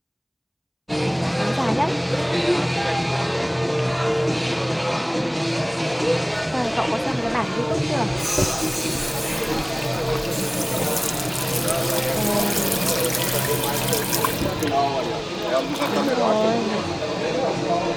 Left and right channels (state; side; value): identical; both; correlation 1.00